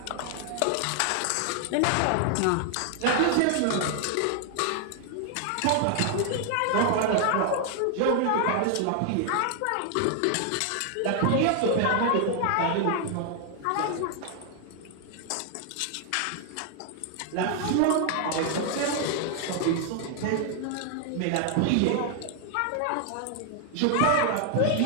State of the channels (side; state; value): both; different; correlation 0.00